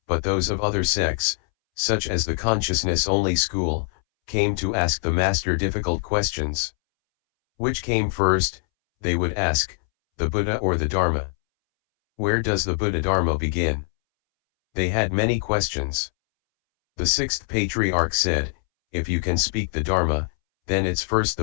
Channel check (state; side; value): silent; right; 63 dB below the other